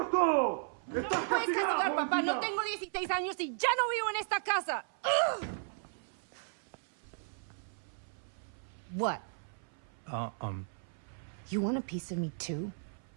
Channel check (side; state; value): left; silent; 54 dB below the other